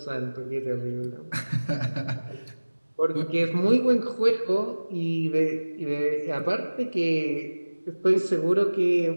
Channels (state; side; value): inverted; both; correlation -1.00